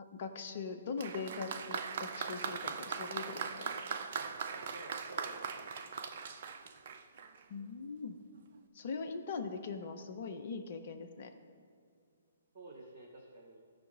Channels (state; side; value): inverted; both; correlation -0.55